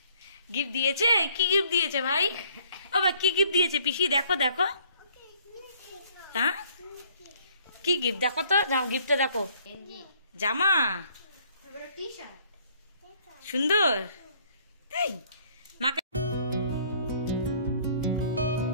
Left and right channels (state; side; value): inverted; both; correlation -0.61